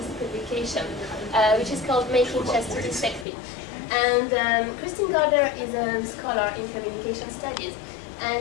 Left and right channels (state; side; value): drops out; right; at 3.2 s